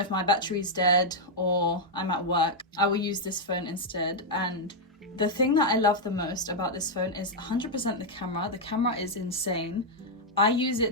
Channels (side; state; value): both; normal; correlation -0.02